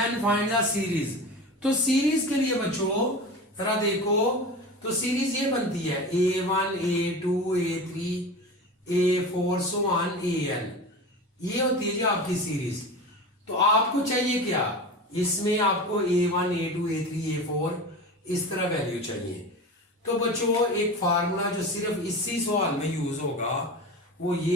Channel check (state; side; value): normal; both; correlation 0.31